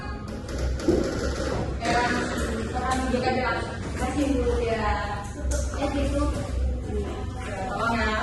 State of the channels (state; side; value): identical; both; correlation 1.00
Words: Ya, silakan duduk aja. Masih Bu ya. Itu. Ya, tolong